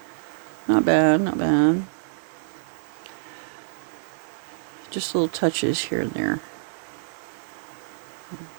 not bad, not bad. Just little touches here and there.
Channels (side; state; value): left; silent; digital silence